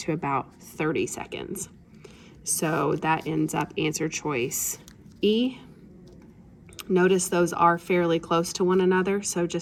about 30 seconds. So that ends up answer choice E. Notice those are fairly close to one another, so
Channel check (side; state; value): both; identical; correlation 1.00